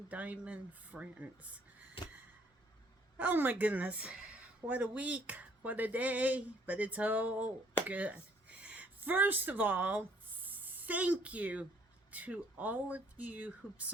diamond friends. Oh my goodness, what a week, what a day, but it's all good. First of all, thank you to all of you who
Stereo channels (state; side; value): normal; both; correlation 0.62